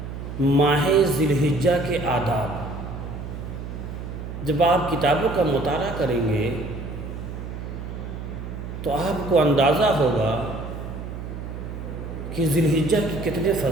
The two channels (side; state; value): right; noise; hum, 8 dB below the sound